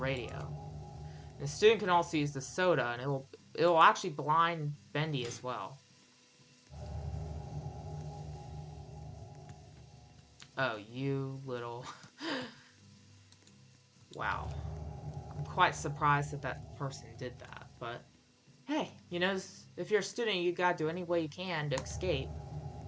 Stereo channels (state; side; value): identical; both; correlation 1.00